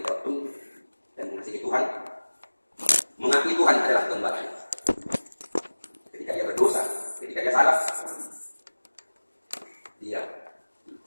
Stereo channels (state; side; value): inverted; both; correlation -1.00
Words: Daud tunduk dan mengasihi Tuhan, mengakui Tuhan adalah gembalanya. Ketika dia berdosa, ketika dia salah, dia